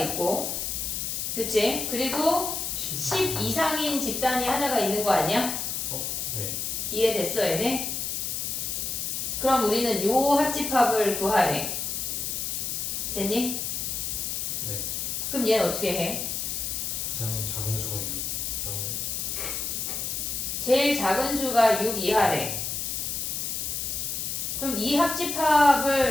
그치? 그리고 10 이상인 집단이 하나가 있는 거 아니야? 네. 이해됐어, 얘네? 그럼 우리는 요 합집합을 구하래. 됐니? 네. 그럼 얘는 어떻게 해? 가장 작은 수가 6 이하면 제일 작은 수가 6 이하래. 그럼 이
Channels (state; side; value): noise; left; hiss, 2 dB below the sound